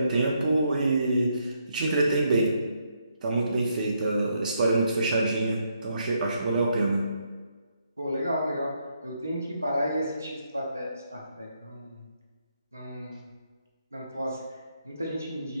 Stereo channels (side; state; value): both; inverted; correlation -0.76